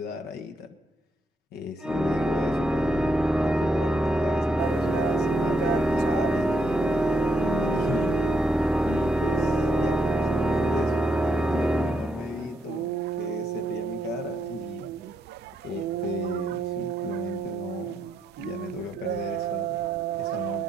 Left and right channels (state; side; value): normal; both; correlation 0.78